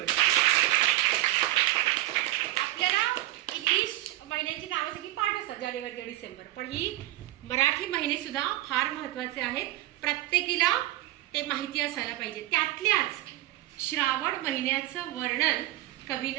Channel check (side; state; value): left; quieter; 16.1 dB